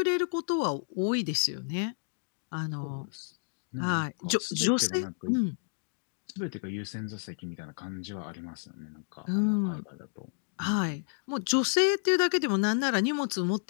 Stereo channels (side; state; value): right; silent; digital silence